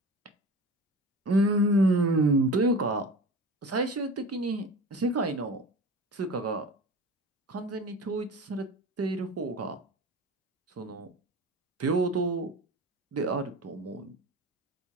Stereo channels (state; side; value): normal; both; correlation 0.35